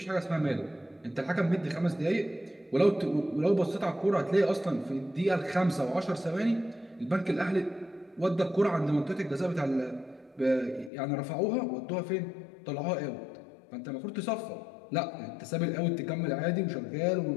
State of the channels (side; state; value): right; drops out; at 10.9 s